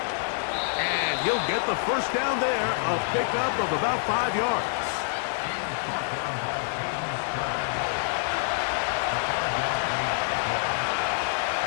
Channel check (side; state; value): right; silent; 59 dB below the other